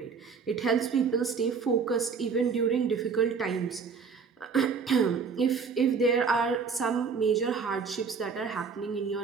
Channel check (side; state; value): left; quieter; 5.6 dB